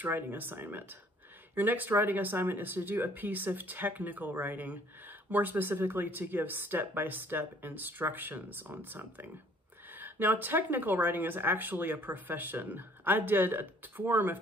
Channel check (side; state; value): both; normal; correlation 0.58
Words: writing assignment. Your next writing assignment is to do a piece of technical writing, more specifically to give step-by-step instructions on something. Now, technical writing is actually a profession. I did a form